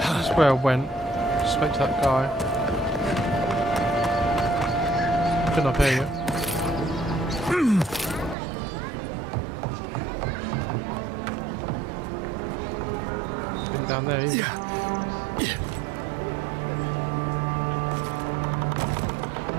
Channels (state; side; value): drops out; left; at 8.3 s